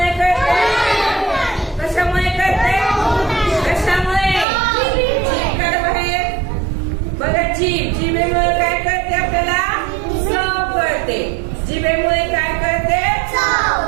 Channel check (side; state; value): left; drops out; at 4.5 s